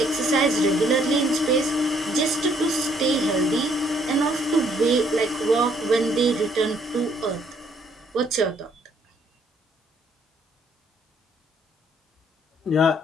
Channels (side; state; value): both; normal; correlation 0.66